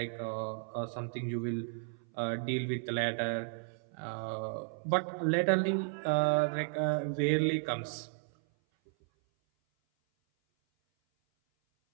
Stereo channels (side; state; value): left; silent; 55 dB below the other